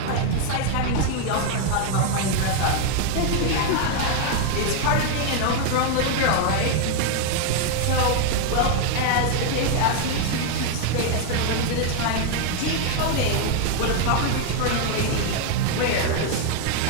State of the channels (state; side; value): different; both; correlation 0.01